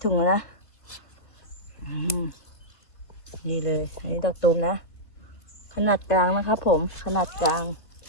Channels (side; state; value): right; late; 1.6 ms